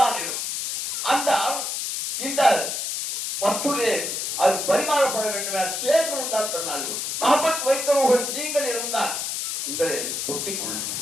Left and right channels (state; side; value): noise; left; hiss, 3 dB below the sound